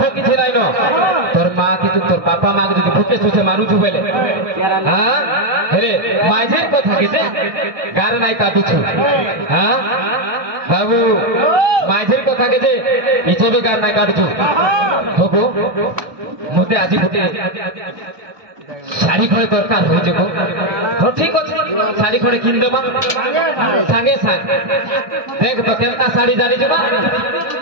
কিছু নাই ন তোর মা কি তোর বাপা মা কে যদি ভুকে সুসে মারুছু বেলে হ্যাঁ হেরে মাঝের কথা কেতে গার নাই কাটুছু হ্যাঁ বাবু মাঝের কথা কেতে ইচ্ছে বি গার নাই কাটুছু হবো মতে আজি গোটে শাড়ি খড়ে দরকার হয়ে যাব তো ঠিক আছে শাড়ি খড়ে কিন দেবা সাঙ্গে সাঙ্গে দেখ তো কেনটা শাড়ি জানি যাবা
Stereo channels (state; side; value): late; left; 1.2 ms